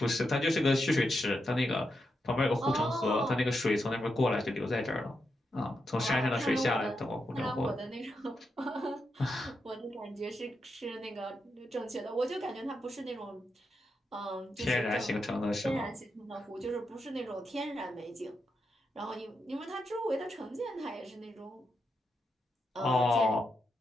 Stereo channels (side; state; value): both; normal; correlation 0.85